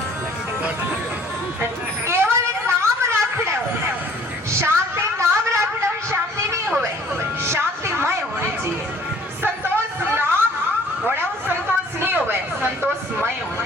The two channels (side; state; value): both; normal; correlation 0.55